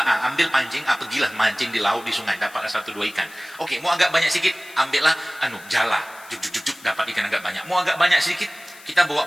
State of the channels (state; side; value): noise; left; hiss, 21 dB below the sound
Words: ambil pancing, pergilah mancing di laut, di sungai, dapat 1-2 ikan. Oke, mau agak banyak sedikit, ambillah jala, juk, dapat ikan agak banyak. Mau agak banyak sedikit, kita